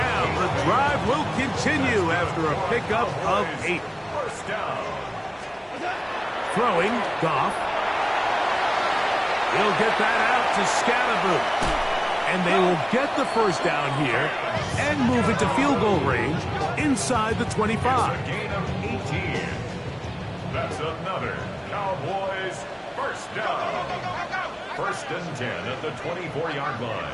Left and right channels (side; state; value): both; identical; correlation 1.00